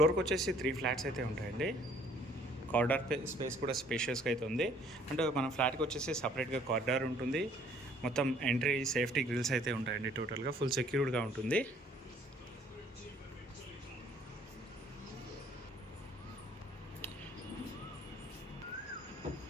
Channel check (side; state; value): both; normal; correlation 0.59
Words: వచ్చేసి 3 ఫ్లాట్స్ అయితే ఉంటాయండి. కారిడార్ స్పేస్ కూడా స్పేషియస్గా అయితే ఉంది. అంటే మన ఫ్లాట్కి వచ్చేసి సపరేట్గా కారిడార్ ఉంటుంది. మొత్తం ఎంట్రీ సేఫ్టీ గ్రిల్స్ అయితే ఉంటాయండి. టోటల్గా ఫుల్ సెక్యూర్డ్గా ఉంటుంది.